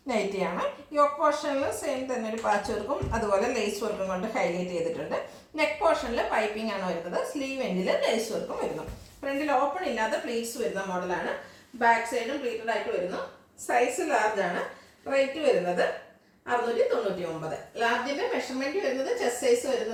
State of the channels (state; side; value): identical; both; correlation 1.00